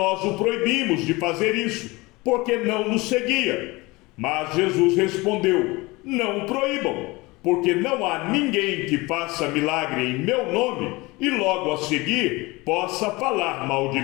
o proibimos de fazer isso, porque não nos seguia." Mas Jesus respondeu: "Não o proíbam, porque não há ninguém que faça milagre em meu nome e logo a seguir possa falar mal de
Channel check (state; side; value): quieter; right; 23.0 dB